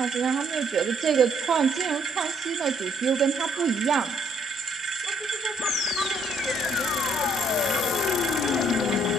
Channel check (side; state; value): both; normal; correlation 0.68